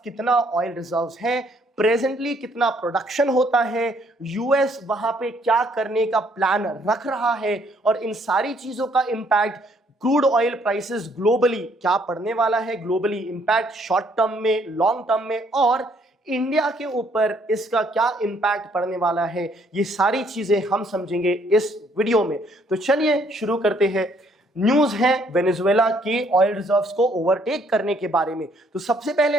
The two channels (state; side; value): normal; both; correlation 0.66